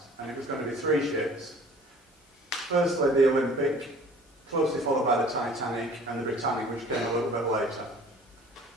And it was going to be three ships. Firstly, the Olympic, closely followed by the Titanic and the Britannic, which came a little bit later.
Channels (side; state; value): both; normal; correlation 0.49